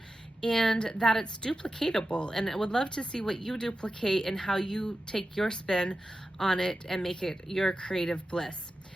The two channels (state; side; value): normal; both; correlation 0.92